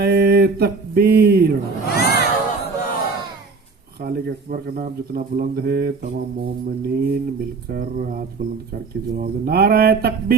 तकबीर। खालिक अकबर का नाम जितना बुलंद है, तमाम मोमिनीन मिलकर हाथ बुलंद करके जवाब दे: नारे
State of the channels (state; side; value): quieter; left; 4.4 dB